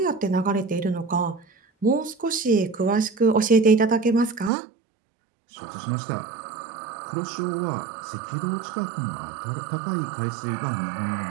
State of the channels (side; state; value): left; drops out; at 4.5 s